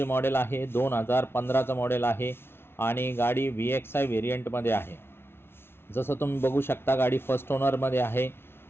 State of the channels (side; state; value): right; late; 0.12 ms